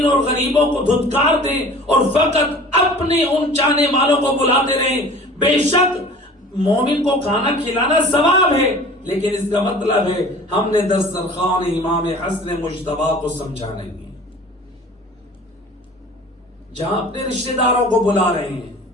اور غریبوں کو دھتکار دیں اور فقط اپنے ان چاہنے والوں کو بلاتے رہیں، بے شک مومن کو کھانا کھلانا ثواب ہے، لیکن اس کا مطلب ہے ہم نے دسترخوان امام حسن مجتبیٰ کو سمجھا نہیں. جہاں اپنے رشتہ داروں کو بلا رہے ہیں،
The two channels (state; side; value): normal; both; correlation 0.44